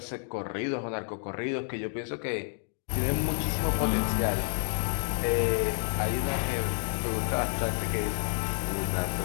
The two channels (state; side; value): silent; right; 58 dB below the other